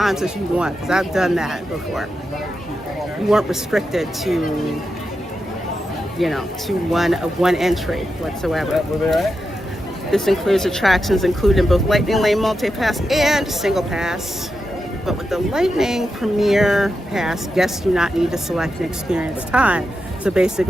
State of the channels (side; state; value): both; normal; correlation 0.88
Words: as you want, because I've done that before. You weren't restricted to, you know, to one entry whatsoever. This includes attractions including both Lightning Lane Multi-Pass and Single Pass. But with the Lightning Premiere Pass, guests do not need to select an experience time. So